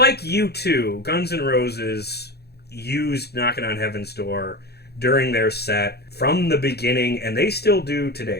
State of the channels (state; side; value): late; right; 0.47 ms